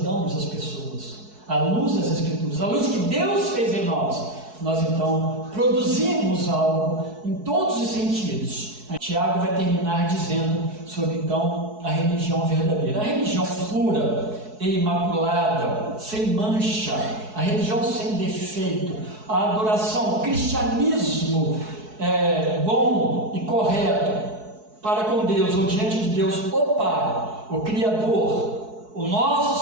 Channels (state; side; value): late; left; 4.7 ms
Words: as pessoas, à luz das Escrituras, à luz que Deus fez em nós. Nós então produzimos algo em todos os sentidos. Tiago vai terminar dizendo sobre então a religião verdadeira, a religião pura e imaculada, sem mancha, a religião sem defeito, a adoração, o cristianismo bom e correto para com Deus, ou diante de Deus, o Pai, o Criador, o